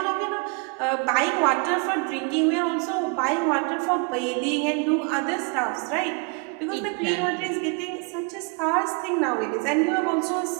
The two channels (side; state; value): left; quieter; 34.2 dB